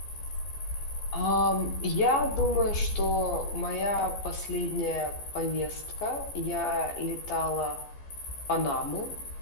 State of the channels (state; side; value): late; right; 14 ms